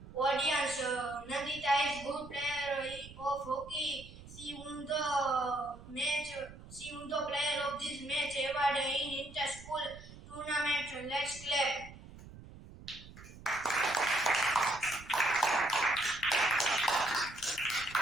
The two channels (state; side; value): noise; right; rumble, 17 dB below the sound